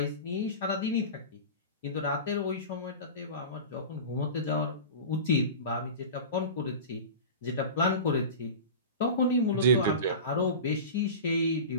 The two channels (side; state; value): both; inverted; correlation -0.31